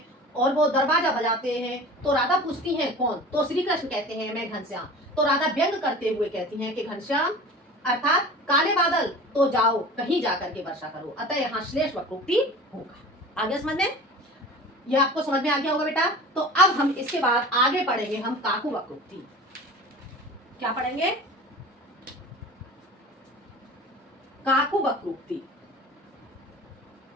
और वो दरवाजा बजाते हैं। तो राधा पूछती हैं कौन, तो श्री कृष्ण कहते हैं मैं घनश्याम। तो राधा व्यंग करते हुए कहती हैं कि घनश्याम अर्थात काले बादल तो जाओ कहीं जाकर के वर्षा करो। अतः यहाँ श्लेष वक्रोक्ति होगा। आगे समझ में, यह आपको समझ में आ गया होगा बेटा। तो अब हम इसके बाद आगे पढ़ेंगे हम काकू वक्रोक्ति। क्या पढ़ेंगे, काकू वक्रोक्ति।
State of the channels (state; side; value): normal; both; correlation 0.39